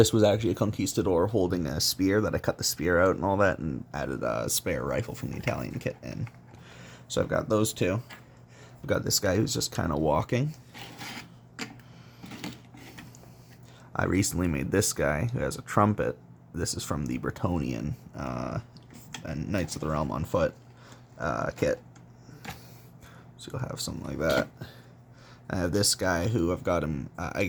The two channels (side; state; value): both; identical; correlation 1.00